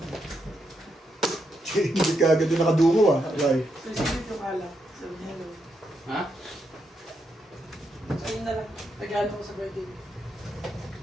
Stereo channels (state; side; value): normal; both; correlation 0.81